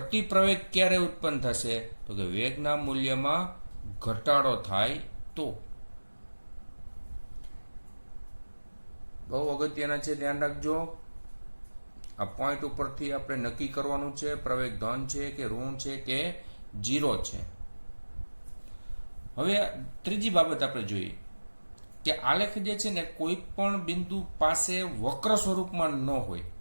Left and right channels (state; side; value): inverted; both; correlation -1.00